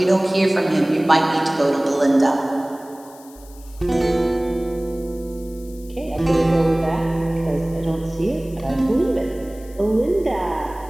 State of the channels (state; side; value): noise; left; hiss, 24 dB below the sound